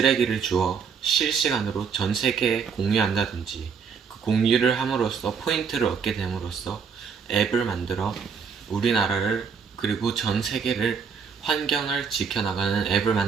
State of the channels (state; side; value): quieter; left; 6.2 dB